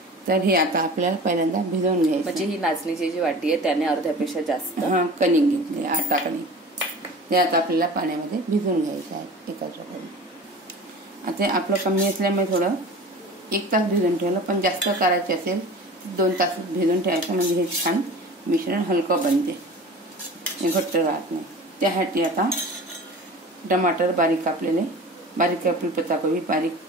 तर हे आता आपल्याला पहिल्यांदा भिजवून घ्यायचं। म्हणजे ही नाचणीची जी वाटी आहे त्याने अर्ध्यापेक्षा जास्त कणिक घेतली, आटा कणिक। ते आता आपल्याला पाण्यामध्ये भिजवून घ्यायचं आहे एकत्र करून। आता आपलं कमी असल्यामुळे थोडं 1 तास भिजवून ठेवलं, पण जास्त करायचे असेल 2 तास भिजवून ठेवायचं, म्हणजे हे छान मिश्रण हलकं बनते, घट्ट राहत नाही। त्यासाठी आता टमाटर बारीक कापलेले, बारीक कापलेली पत्ताकोबी, बारीक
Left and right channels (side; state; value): both; normal; correlation 0.39